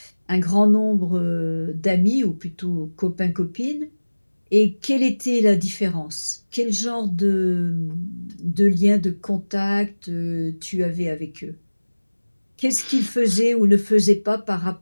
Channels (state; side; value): inverted; both; correlation -1.00